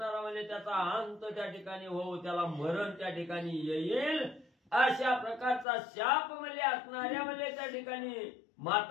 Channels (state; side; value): drops out; right; at 5.7 s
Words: म्हणजे त्याचा अंत त्या ठिकाणी हो त्याला मरण त्या ठिकाणी येईल. अशा प्रकारचा शाप म्हणजे असणाऱ्या म्हणजे त्या ठिकाणी